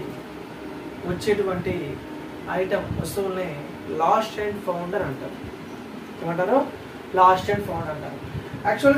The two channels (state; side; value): identical; both; correlation 1.00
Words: వచ్చేటువంటి ఐటమ్ వస్తువుల్ని లాస్ట్ అండ్ ఫౌండ్ అని అంటారు. ఏమంటారు? లాస్ట్ అండ్ ఫౌండ్ అంటారు.